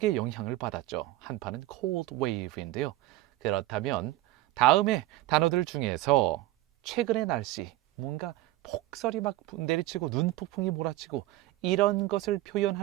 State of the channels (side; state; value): left; quieter; 16.8 dB